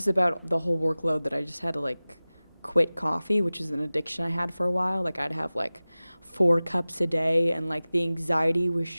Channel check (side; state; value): both; inverted; correlation -0.98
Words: about the whole workload that I just had to, like, quit coffee, which is an addiction I had for a while. Like, I'd have, like, 4 cups a day, and, like, the anxiety was